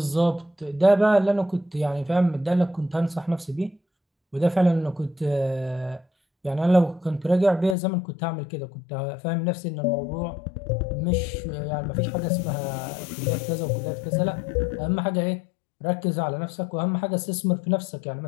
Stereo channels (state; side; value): drops out; right; at 7.8 s